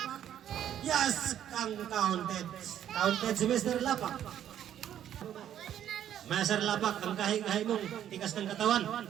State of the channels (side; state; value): left; quieter; 10.6 dB